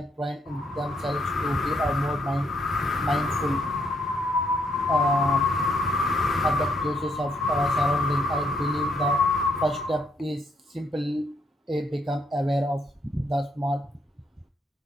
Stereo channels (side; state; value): both; normal; correlation 0.72